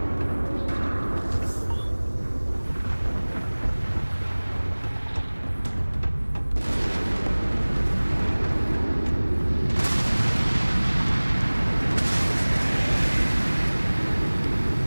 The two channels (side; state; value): both; inverted; correlation -1.00